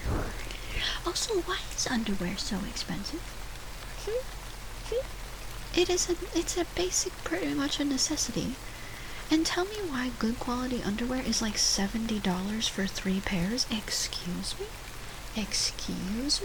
Also, why is underwear so expensive? It's a basic, pretty much a necessity. And tell me why good quality underwear is like $70 for 3 pairs? Excuse me? Excuse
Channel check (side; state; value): both; identical; correlation 1.00